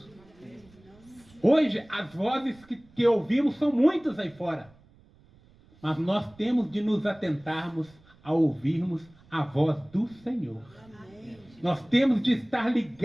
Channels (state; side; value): noise; right; rumble, 28 dB below the sound